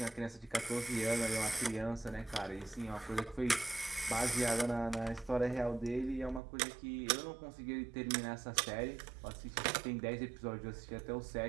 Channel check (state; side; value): drops out; left; at 6.4 s